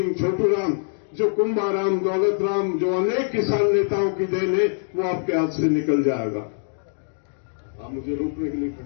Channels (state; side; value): silent; right; digital silence